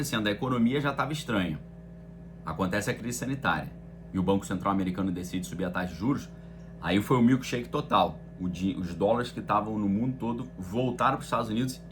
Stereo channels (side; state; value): both; identical; correlation 1.00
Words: a economia já estava estranha, acontece a crise sanitária e o Banco Central americano decide subir a taxa de juros, aí foi o milkshake total. Os dólares que estavam no mundo todo voltaram para os Estados Unidos